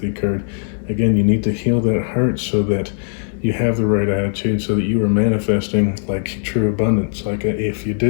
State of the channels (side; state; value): right; silent; 61 dB below the other